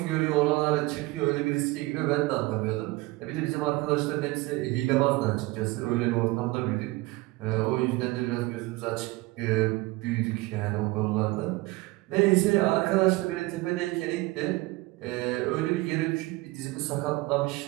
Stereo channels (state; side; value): quieter; left; 21.4 dB